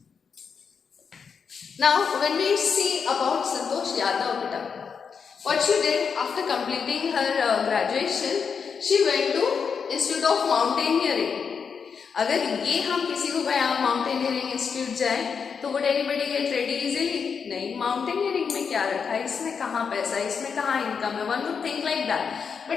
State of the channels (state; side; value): quieter; right; 6.1 dB